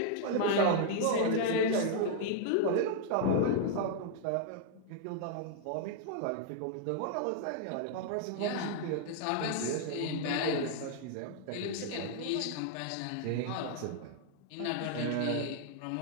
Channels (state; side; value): different; both; correlation -0.01